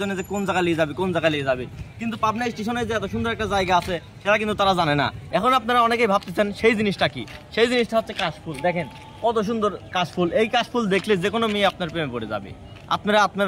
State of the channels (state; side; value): identical; both; correlation 1.00